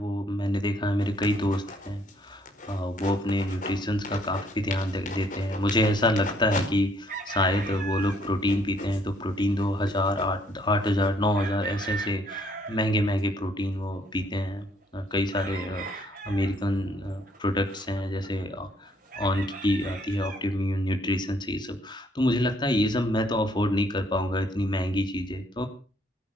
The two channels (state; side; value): normal; both; correlation 0.65